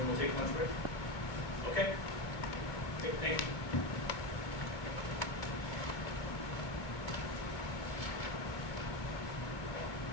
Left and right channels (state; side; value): late; right; 2.4 ms